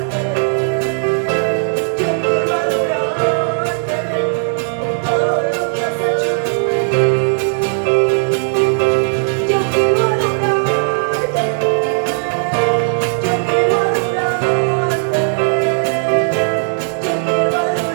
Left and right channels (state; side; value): silent; left; 57 dB below the other